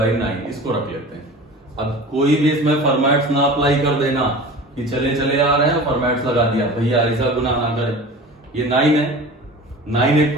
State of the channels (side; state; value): both; normal; correlation 0.37